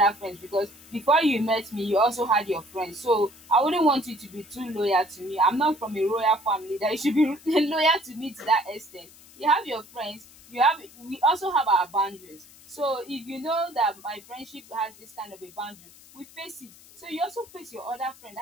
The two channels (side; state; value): left; noise; hiss, 22 dB below the sound